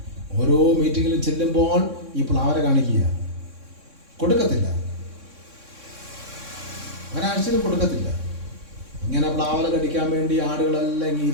ഓരോ മീറ്റിങ്ങിലും ചെല്ലുമ്പോൾ ഈ പ്ലാവല കാണിക്കുക. കൊടുക്കത്തില്ല, ഒരാഴ്ചയിലും കൊടുക്കത്തില്ല. ഇങ്ങനെ പ്ലാവല കടിക്കാൻ വേണ്ടി ആടുകളെല്ലാം ഇങ്ങനെ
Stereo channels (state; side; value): late; left; 3.6 ms